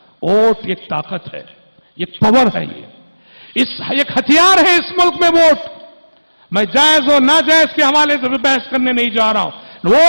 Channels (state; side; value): inverted; both; correlation -1.00